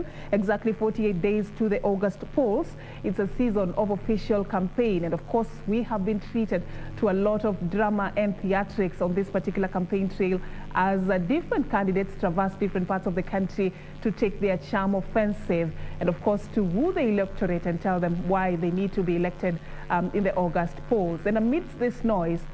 exactly 48 days to the August polls. It's a season of official campaign, and of course, we have been treated to a lot of drama and theatrics on this particular campaign trail as different candidates traverse different parts of the country to take their charm offensive, and of course, to woo the electorate and tell them why they need to be elected in the August polls. And amidst this noise,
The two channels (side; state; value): both; identical; correlation 1.00